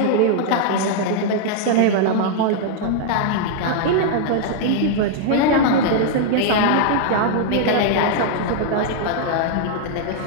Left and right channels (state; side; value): different; both; correlation 0.00